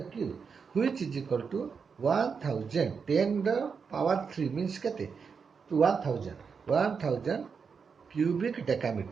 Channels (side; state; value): left; quieter; 5.8 dB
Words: cube, which is equal to 1000. 10 the power 3 means kete? 1000. 1000 cubic